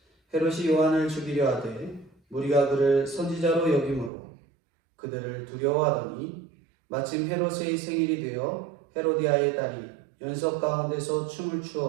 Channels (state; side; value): drops out; left; at 4.1 s